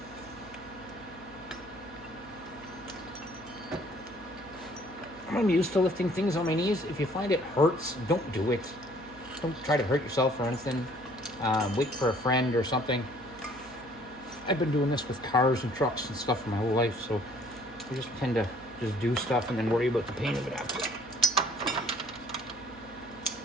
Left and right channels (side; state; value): right; noise; hum, 24 dB below the sound